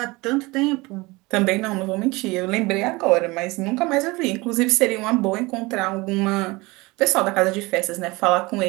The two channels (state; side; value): quieter; left; 23.2 dB